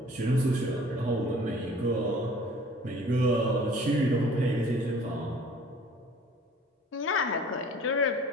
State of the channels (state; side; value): normal; both; correlation 0.50